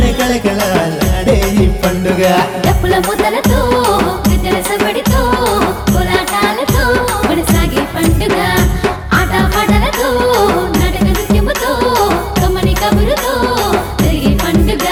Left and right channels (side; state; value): both; identical; correlation 1.00